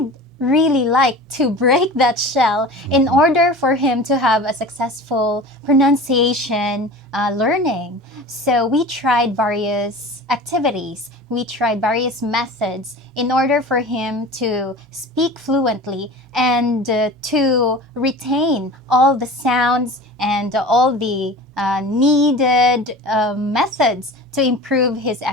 really like to break that shell in order for him to have a successful pronunciation learning. So we tried various activities. We tried various methods in order for him to speak fluently and to retain all the sounds and all the needed methods to improve his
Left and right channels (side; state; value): both; normal; correlation 0.37